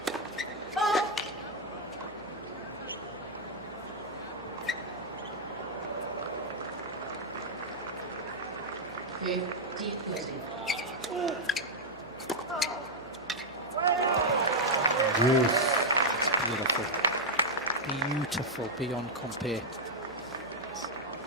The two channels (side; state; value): right; noise; hum, 24 dB below the sound